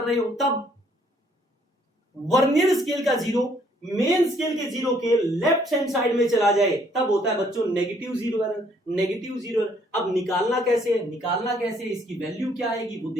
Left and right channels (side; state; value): both; normal; correlation 0.65